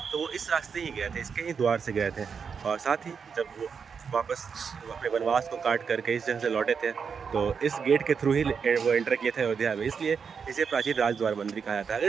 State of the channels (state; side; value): quieter; left; 6.2 dB